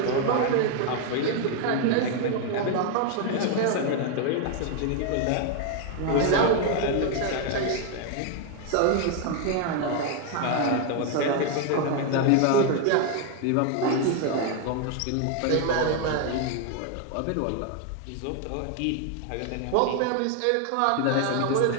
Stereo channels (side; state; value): both; different; correlation 0.01